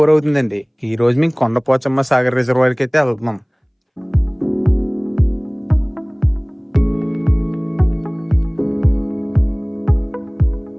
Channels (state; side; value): identical; both; correlation 1.00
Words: అవుతుందండి. ఈ రోజు మేము కొండపోచమ్మ సాగర్ రిజర్వాయర్కి అయితే వెళ్తున్నాం.